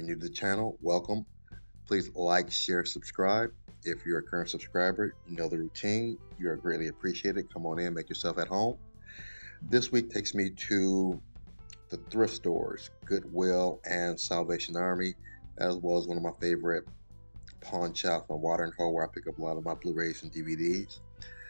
new to the channel, welcome. Please like, share, subscribe. If you're a current subscriber, you know the routine. You are greatly appreciated. Come on in, make yourself at home. This week takes me to the thrift stores, Goodwill and Salvation Army, as well as one of my favorite pawn shops on Water and Hole, where I pick up a lot of my Blu-rays and DVDs.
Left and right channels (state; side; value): inverted; both; correlation -1.00